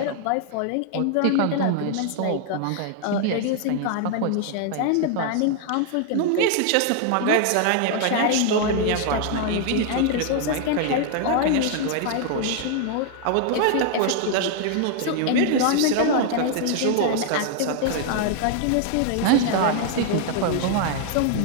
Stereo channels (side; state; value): both; different; correlation 0.00